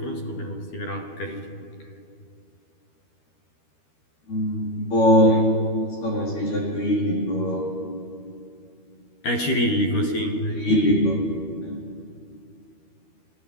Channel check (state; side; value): late; right; 13 ms